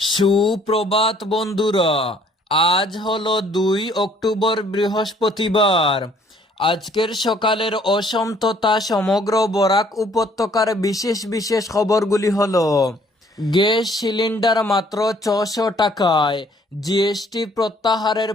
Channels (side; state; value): both; normal; correlation 0.61